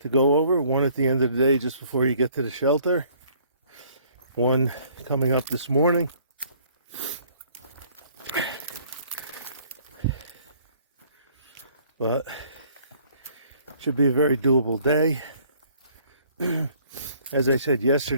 to go over. One at the end of the day just before you get to the shelter. One coming up this morning. But should be a very doable day. As I said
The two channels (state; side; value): inverted; both; correlation -0.59